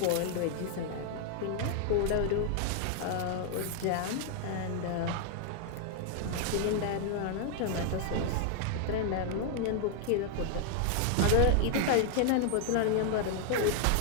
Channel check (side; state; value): both; different; correlation -0.01